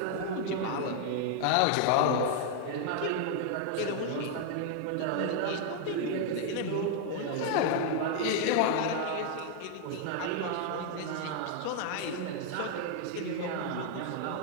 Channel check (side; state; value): both; different; correlation 0.00